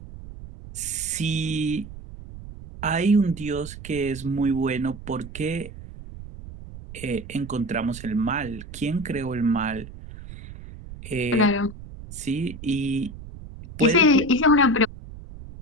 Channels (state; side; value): noise; right; rumble, 14 dB below the sound